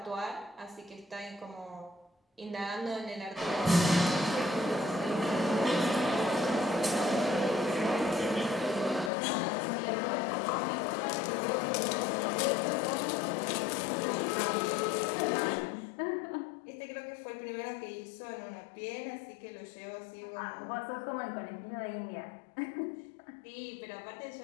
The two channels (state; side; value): drops out; right; at 9.1 s